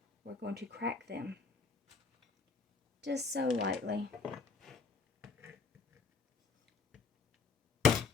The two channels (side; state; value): right; quieter; 4.6 dB